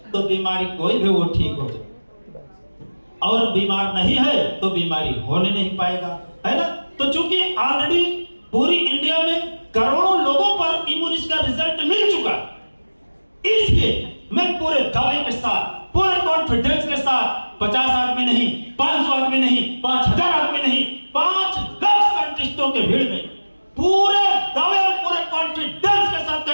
तो बीमारी कोई भी वो ठीक हो जाएगा। और बीमार नहीं है तो बीमारी होने नहीं पाएगा, है ना। तो चूंकि ऑलरेडी पूरी इंडिया में करोड़ों लोगों पर इम्यूनिस का रिजल्ट मिल चुका, इसलिए मैं पूरे दावे के साथ, पूरे कॉन्फिडेंस के साथ 50 आदमी नहीं, 500 आदमी नहीं, 5000 आदमी नहीं, 5 लाख साइंटिस्टों के भीड़ में पूरे दावे और पूरे कॉन्फिडेंस के साथ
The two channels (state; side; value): inverted; both; correlation -1.00